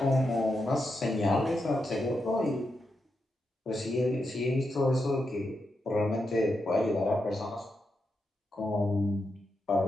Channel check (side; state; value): both; normal; correlation 0.85